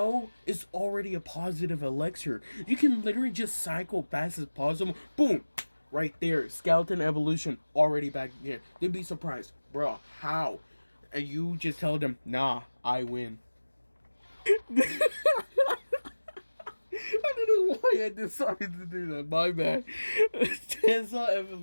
it's already a positive elixir. You can literally just cycle fast as possible. Boom! Right there. Skeleton Evolution already back there. They'd be surprised. Bro, how? And you just tell them, nah, I win. I don't know why I decided to do that. My bad. Tesla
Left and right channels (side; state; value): both; inverted; correlation -1.00